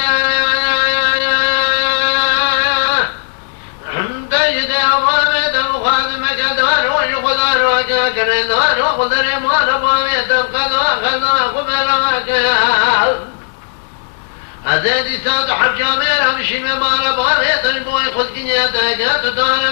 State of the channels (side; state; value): right; silent; digital silence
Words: أزادي ساد حجامير همشي ممارا بغيت البوي خذ كنياتك تدار